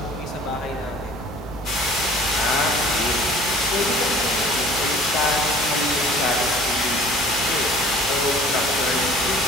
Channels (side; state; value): both; normal; correlation 0.49